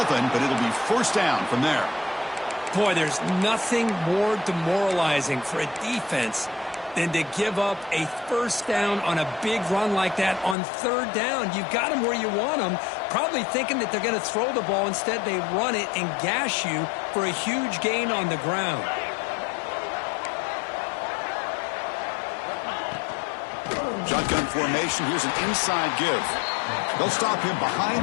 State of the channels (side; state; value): right; drops out; at 10.6 s